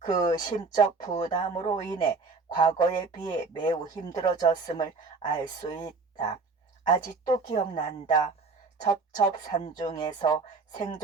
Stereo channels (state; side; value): quieter; left; 4.3 dB